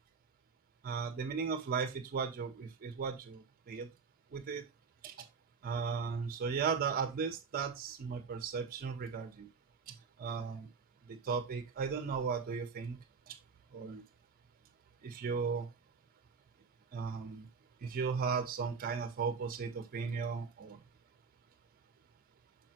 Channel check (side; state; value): left; quieter; 5.4 dB